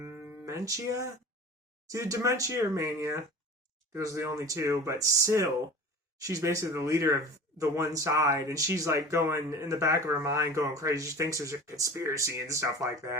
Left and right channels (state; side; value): normal; both; correlation 0.38